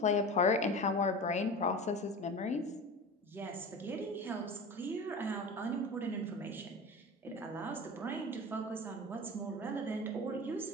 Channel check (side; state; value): both; normal; correlation 0.32